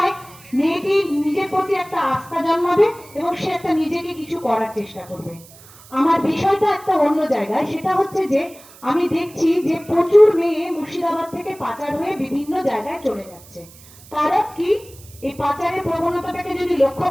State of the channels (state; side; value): noise; right; hiss, 22 dB below the sound